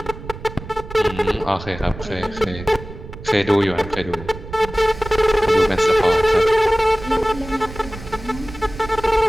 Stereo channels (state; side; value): noise; right; rumble, 13 dB below the sound